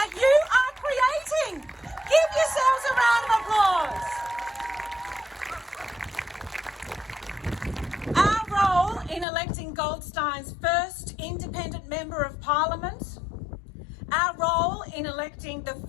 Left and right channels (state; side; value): drops out; right; at 9.2 s